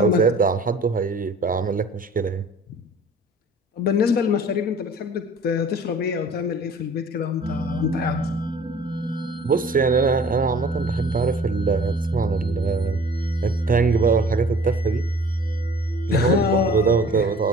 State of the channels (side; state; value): both; normal; correlation 0.48